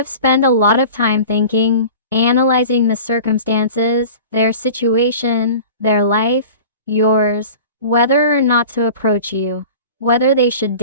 spent a lot of time thinking, analyzing the circumstances, their situation, their life, yours, whether or not to approach you, whether they should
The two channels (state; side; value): inverted; both; correlation -0.39